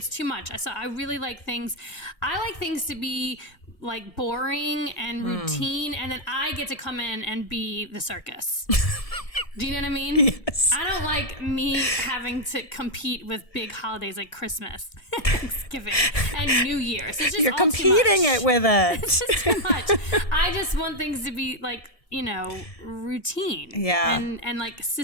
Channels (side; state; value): right; late; 1.8 ms